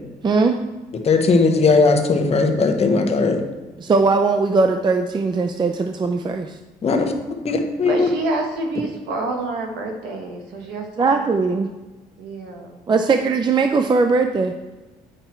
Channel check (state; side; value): normal; both; correlation 0.60